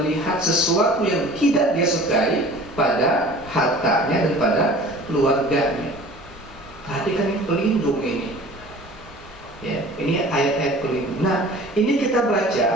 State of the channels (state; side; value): normal; both; correlation 0.44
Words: sesuatu yang tidak dia sukai pada hartanya dan pada keluarganya. Perhatikan, ini pelindung ini. Ya, ini ayat-ayat pelindung. Nah, ini kita baca.